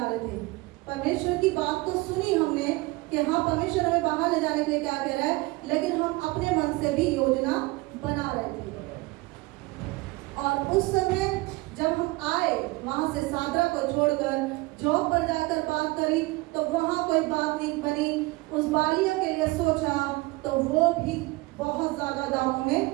रहे थे। परमेश्वर की बात तो सुनी हमने कि हाँ, परमेश्वर हमें बाहर ले जाने के लिए क्या कह रहा है, लेकिन हम अपने मन से भी योजना बना रहे थे। और उस समय जब हम आए, वहां से सादरा को छोड़कर जॉब पर जाकर बात करी, तो वहां कोई बात नहीं बनी। उस बालिया के लिए सोचा तो वो भी बहुत ज्यादा दामों में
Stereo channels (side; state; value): left; quieter; 22.8 dB